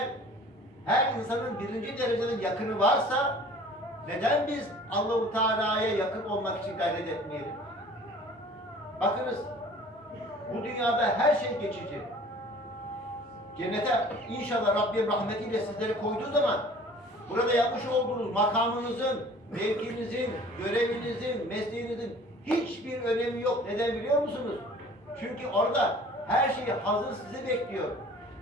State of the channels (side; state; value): both; normal; correlation 0.48